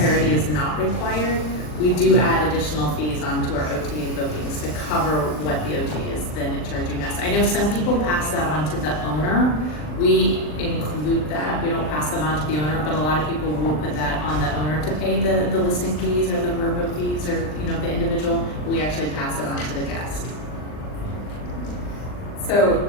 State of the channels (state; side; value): late; right; 39 ms